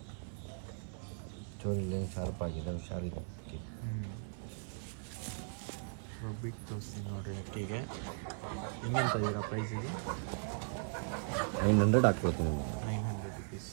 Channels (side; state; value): left; silent; 52 dB below the other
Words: ಚೋರಿಲಿ ಶಾರ್ಪ್ ಆಗಿದೆ, ಹುಷಾರಿದೆ ಅಕ್ಕಿ. ಬಿಟ್ಟು ತೋರಿಸ್ತೀನಿ ನೋಡ್ರಿ ಅಕ್ಕಿಗೆ. ಹೆಂಗಂತ ಇದೀರ ಪ್ರೈಸಿಗೆ? 900 ಹಾಕ್ಕೊಡ್ತೀನಿ. 900 rupees.